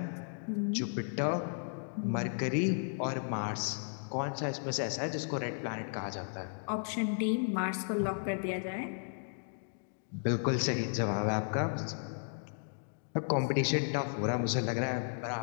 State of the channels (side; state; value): right; silent; digital silence